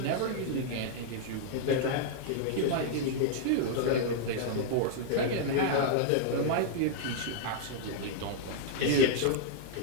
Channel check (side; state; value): both; different; correlation -0.01